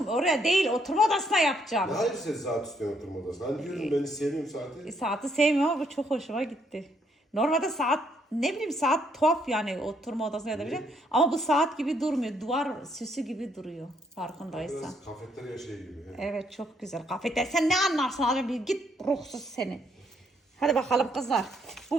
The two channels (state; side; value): normal; both; correlation 0.71